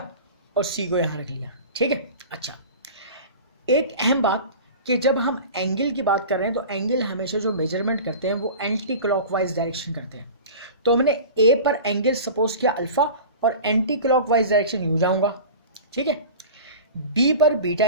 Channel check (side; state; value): both; inverted; correlation -0.35